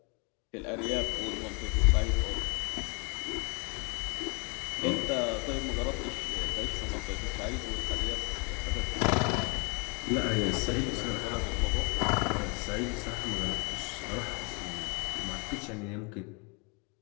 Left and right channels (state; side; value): quieter; right; 32.6 dB